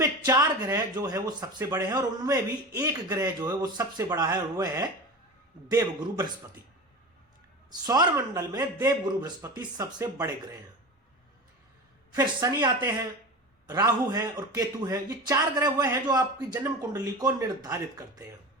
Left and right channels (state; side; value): normal; both; correlation 0.29